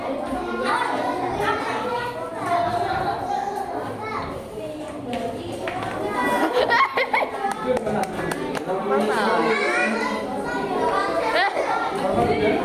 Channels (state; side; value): identical; both; correlation 1.00